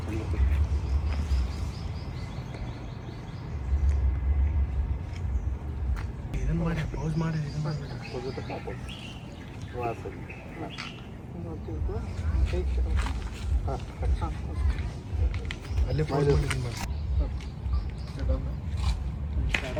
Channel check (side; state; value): both; identical; correlation 1.00